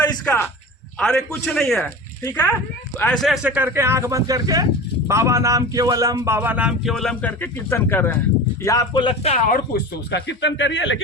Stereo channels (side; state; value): both; normal; correlation 0.32